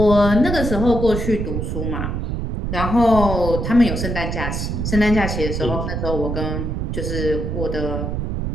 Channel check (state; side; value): noise; right; rumble, 2 dB below the sound